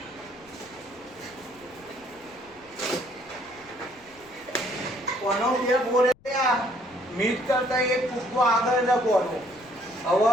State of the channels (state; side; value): noise; left; rumble, 28 dB below the sound